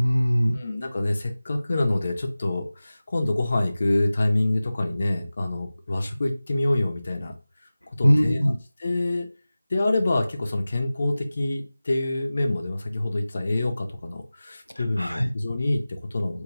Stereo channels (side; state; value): both; inverted; correlation -0.97